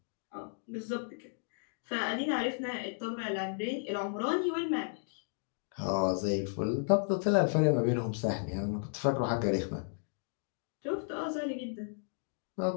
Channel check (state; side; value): silent; right; digital silence